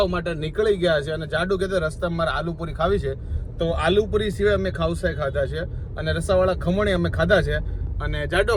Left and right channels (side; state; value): both; identical; correlation 1.00